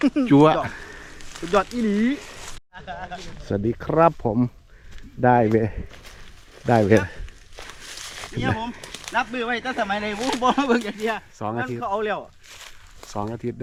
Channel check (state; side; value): identical; both; correlation 1.00